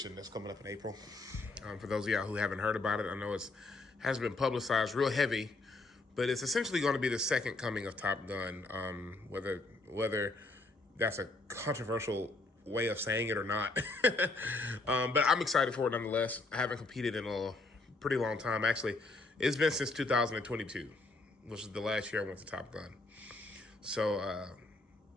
that's coming up in April. For those of y'all who haven't heard about it, I know it's hasn't been publicized real heavy, but it's essentially going to be the second coming of Top Gun. Whether that's a controversial way of saying it or not, but I'm excited for it nonetheless. I haven't competed in a pretty long time. Actually, it's been since 2022. Which is the last year I went to Top Gun. So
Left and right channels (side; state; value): right; quieter; 3.2 dB